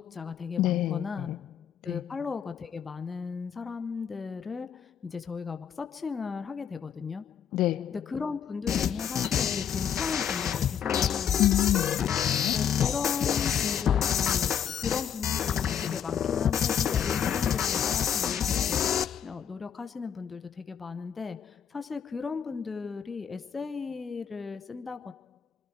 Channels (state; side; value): quieter; right; 8.4 dB